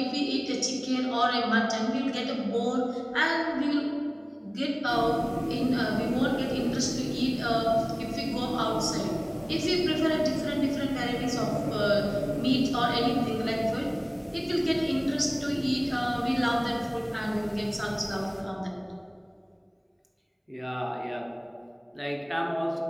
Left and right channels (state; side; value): identical; both; correlation 1.00